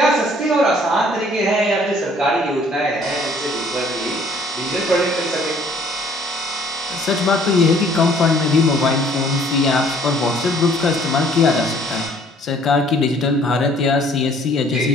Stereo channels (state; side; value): normal; both; correlation 0.58